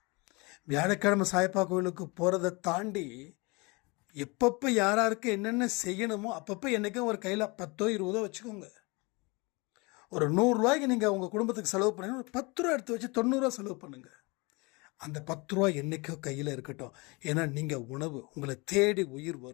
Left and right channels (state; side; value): quieter; right; 27.1 dB